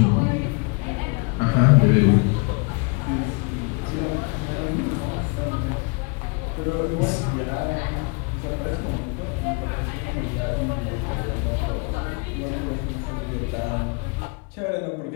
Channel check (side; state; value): right; quieter; 32.4 dB